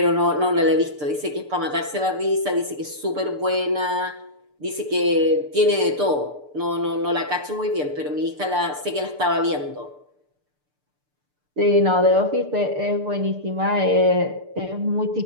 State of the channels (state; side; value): late; left; 6.8 ms